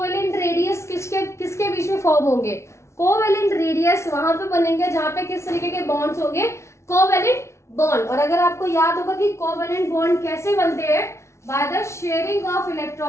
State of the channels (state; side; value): late; right; 0.13 ms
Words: radius किसके बीच में फॉर्म होंगे? कोवेलेंट रेडियस वहां पे बनेंगे जहां पे किस तरीके के बॉन्ड्स होंगे? Covalent bond. और अगर आपको याद होगा कि कोवेलेंट बॉन्ड कैसे बनते हैं? By the sharing of